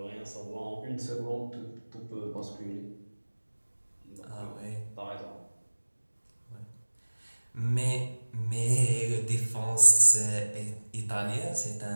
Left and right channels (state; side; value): inverted; both; correlation -1.00